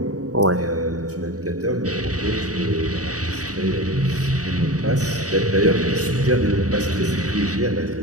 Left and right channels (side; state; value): left; late; 0.67 ms